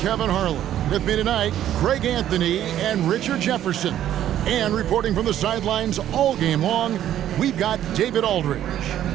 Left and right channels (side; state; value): left; quieter; 11.6 dB